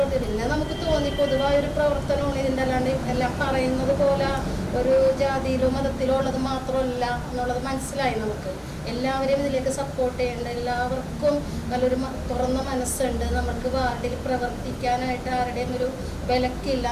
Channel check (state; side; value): identical; both; correlation 1.00